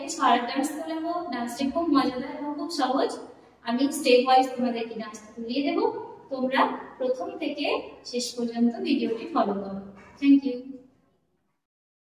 শর্ট ডান্স তোলাবো। ডান্সটি খুব মজাদার এবং খুব সহজ। আমি স্টেপ ওয়াইজ তোমাদেরকে ডান্সটা তুলিয়ে দেবো। তোমরা প্রথম থেকে শেষ পর্যন্ত ভিডিওটি ফলো করো। Thank you.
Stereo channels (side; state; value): both; identical; correlation 1.00